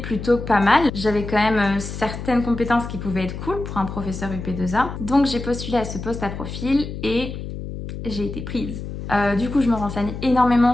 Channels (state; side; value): noise; left; hum, 8 dB below the sound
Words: pas mal. J'avais quand même certaines compétences qui pouvaient être cool pour un professeur UP2A. Donc j'ai postulé à ce poste à profil et j'ai été prise. Du coup, je me renseigne énormément